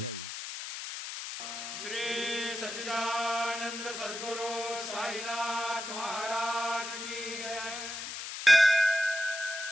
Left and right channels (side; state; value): left; noise; hiss, 7 dB below the sound